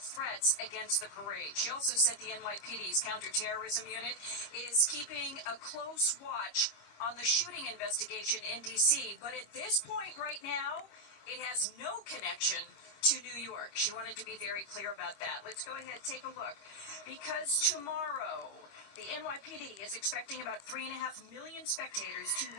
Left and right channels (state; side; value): late; right; 25 ms